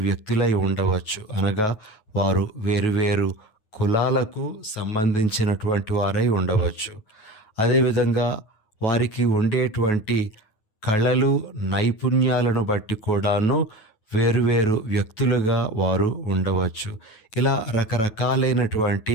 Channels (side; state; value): right; late; 9.3 ms